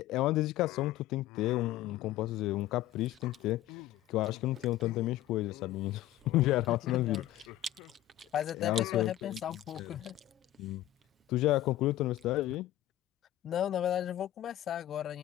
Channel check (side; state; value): right; quieter; 13.9 dB